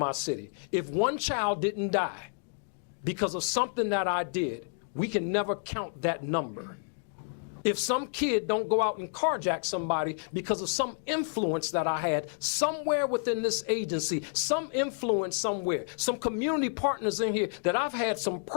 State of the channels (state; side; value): silent; right; 58 dB below the other